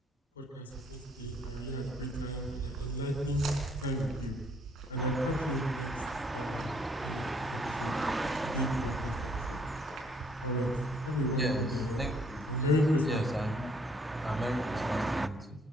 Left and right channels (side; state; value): both; normal; correlation 0.64